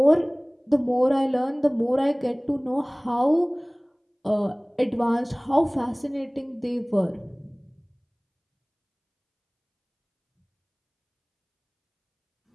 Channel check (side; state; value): both; identical; correlation 1.00